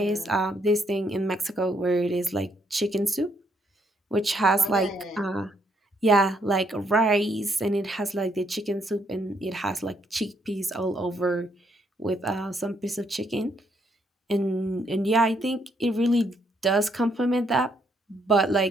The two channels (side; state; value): both; normal; correlation 0.73